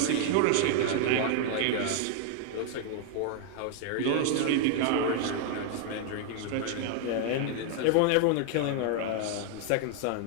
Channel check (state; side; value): different; both; correlation 0.00